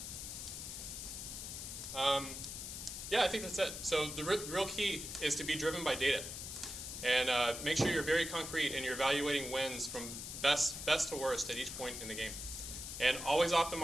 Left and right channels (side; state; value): left; noise; hiss, 7 dB below the sound